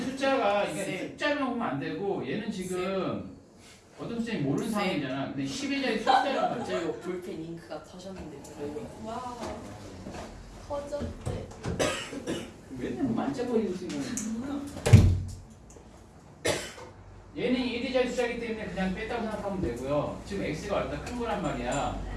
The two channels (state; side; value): identical; both; correlation 1.00